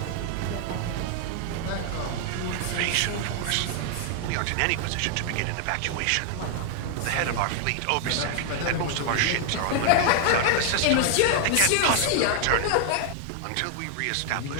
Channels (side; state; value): both; different; correlation 0.00